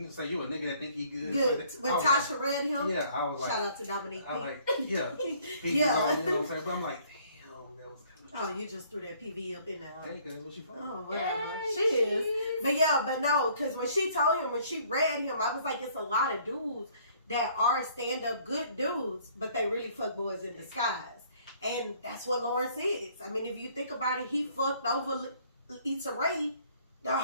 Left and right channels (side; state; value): both; inverted; correlation -0.60